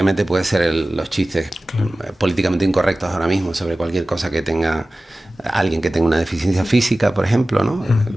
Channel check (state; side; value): normal; both; correlation 0.97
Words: puede ser los chistes, claro, políticamente incorrectos ahora mismo sobre cualquier cosa que tenga alguien que tenga una deficiencia física, por ejemplo, ¿no?